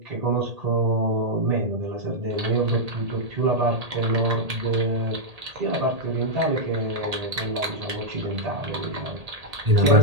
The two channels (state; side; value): late; left; 1.8 ms